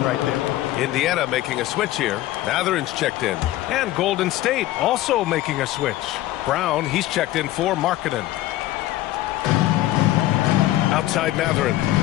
right there. Indiana making a switch here. Matherin's checked in. And Golden State also making a switch. Brown, he's checked in for Markkanen. Outside Mathurin.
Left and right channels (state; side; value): quieter; right; 15.5 dB